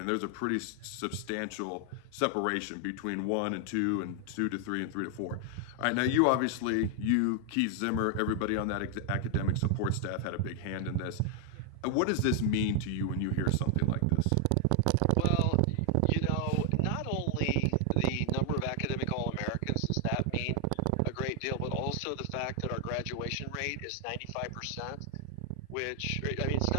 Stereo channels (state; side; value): different; both; correlation 0.00